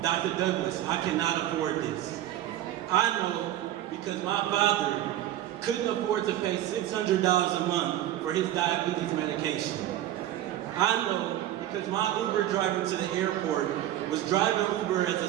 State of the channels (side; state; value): left; quieter; 12.9 dB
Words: Dr. Douglas, I cannot afford this. I know because my father couldn't afford to pay $600 a month for his diabetes medication. I know because my Uber driver to the airport was driving Uber as a